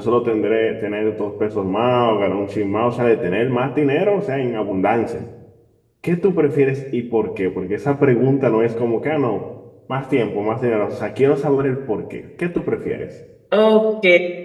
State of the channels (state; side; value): identical; both; correlation 1.00